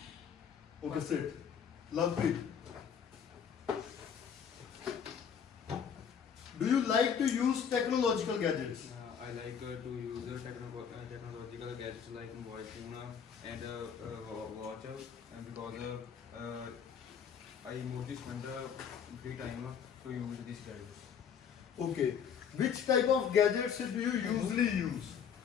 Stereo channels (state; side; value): quieter; right; 7.5 dB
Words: Okay, sit. Lovepreet. Do you like to use technological gadgets? I like to use technological gadgets like mobile phone and watch because I mostly spend free time to use these gadgets. Okay, which type of gadgets do you usually use?